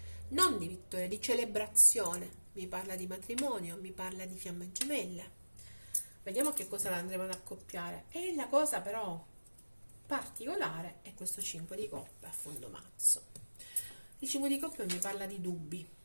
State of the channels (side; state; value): both; inverted; correlation -1.00